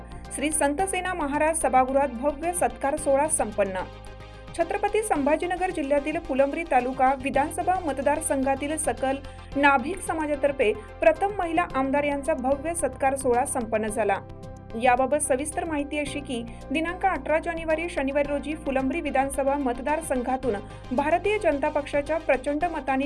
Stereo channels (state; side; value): identical; both; correlation 1.00